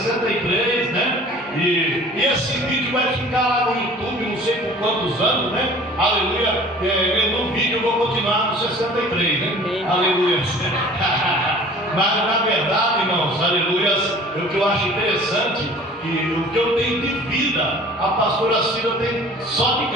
né? E esse vídeo vai ficar lá no YouTube, não sei por quantos anos, né? Aleluia. No vídeo eu vou continuar no 63, né? Aleluia. Mas na verdade, irmãos, aleluias, o que eu acho interessante, que o que eu tenho de vida, a pastora Cida tem só de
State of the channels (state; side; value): normal; both; correlation 0.47